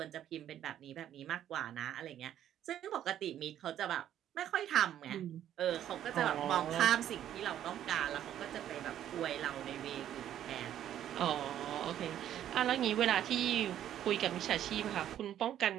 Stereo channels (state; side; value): quieter; left; 11.1 dB